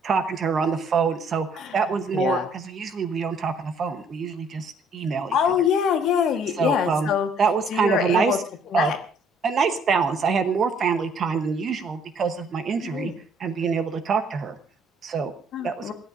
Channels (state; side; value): normal; both; correlation 0.61